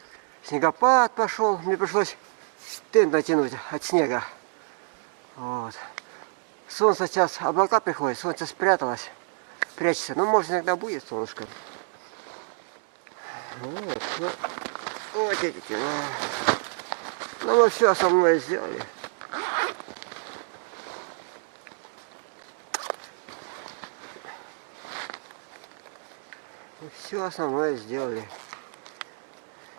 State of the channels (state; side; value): silent; left; 56 dB below the other